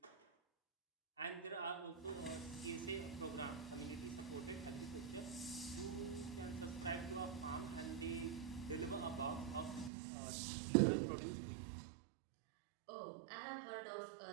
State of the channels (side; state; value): left; drops out; at 9.9 s